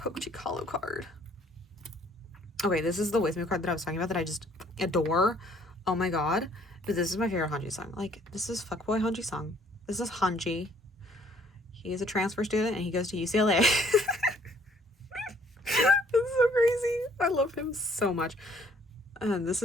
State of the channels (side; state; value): both; normal; correlation 0.61